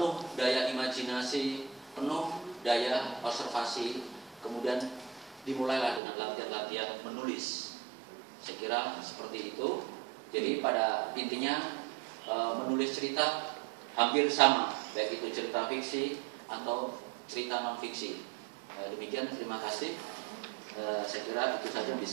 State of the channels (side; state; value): left; drops out; at 6.0 s